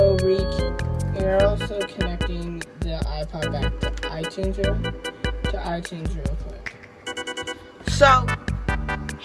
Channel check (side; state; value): both; identical; correlation 1.00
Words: connecting the iPod back to iTunes real quick. So